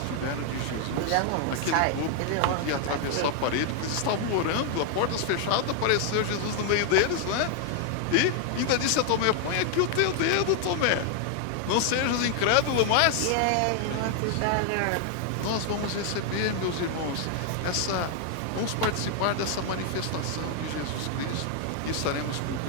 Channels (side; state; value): both; different; correlation 0.00